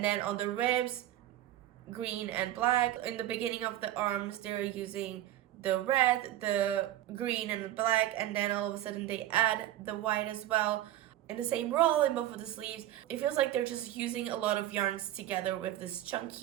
then on the ribs, green and black. In the beginning of the arms, they're using the red, the green, and the black, and then all of a sudden they add the white as well in the same roll in both of the sleeves. It feels like they're just using a lot of yarns together with this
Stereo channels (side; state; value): left; quieter; 13.5 dB